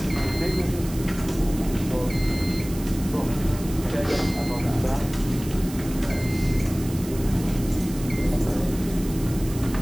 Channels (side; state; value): right; noise; hiss, 15 dB below the sound